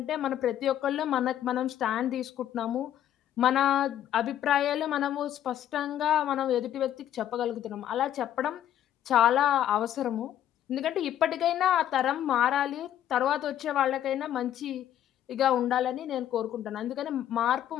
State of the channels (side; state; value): right; quieter; 11.2 dB